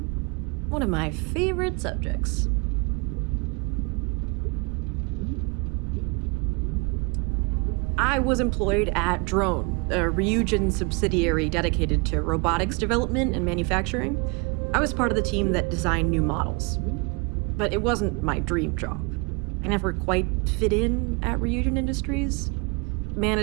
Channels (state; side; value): quieter; left; 30.6 dB